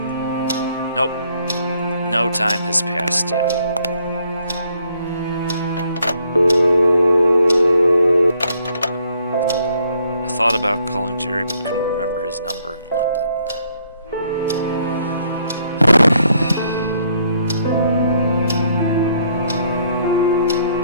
Nope. No time has passed yet. I thought about calling Jerry, but couldn't remember his number in London.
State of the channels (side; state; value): both; inverted; correlation -0.69